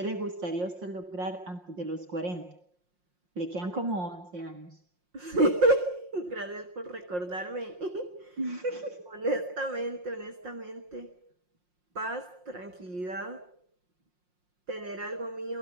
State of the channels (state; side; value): late; left; 5.6 ms